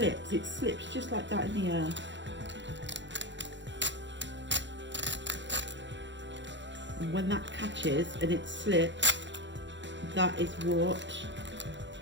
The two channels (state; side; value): late; left; 0.53 ms